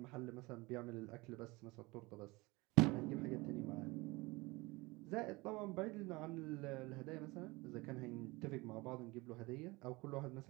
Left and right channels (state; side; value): quieter; left; 23.3 dB